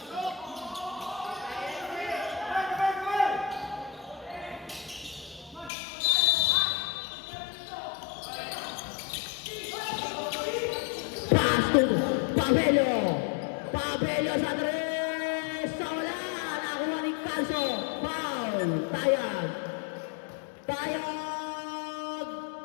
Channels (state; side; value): drops out; right; at 5.7 s